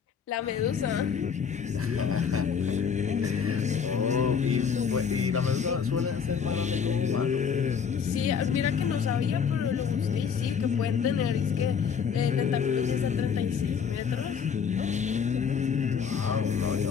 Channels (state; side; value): quieter; right; 6.8 dB